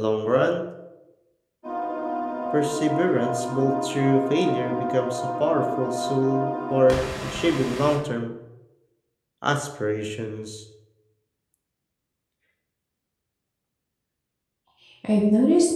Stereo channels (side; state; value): both; identical; correlation 1.00